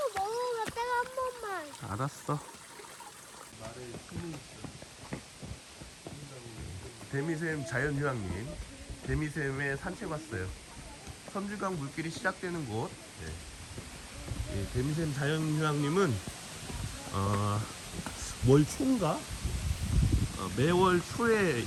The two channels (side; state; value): both; identical; correlation 1.00